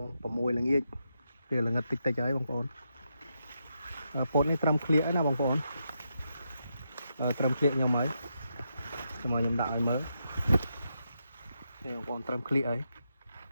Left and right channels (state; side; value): inverted; both; correlation -0.83